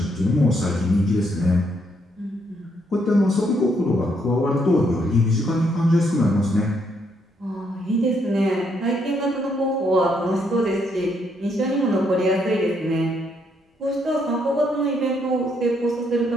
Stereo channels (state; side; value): normal; both; correlation 0.73